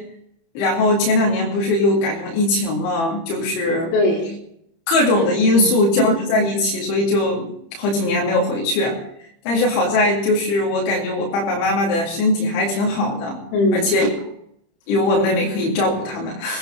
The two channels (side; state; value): right; late; 30 ms